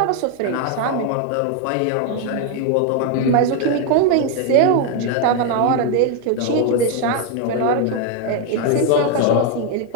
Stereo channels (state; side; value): different; both; correlation 0.01